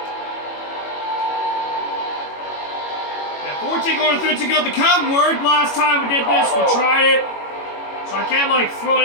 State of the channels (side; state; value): right; late; 21 ms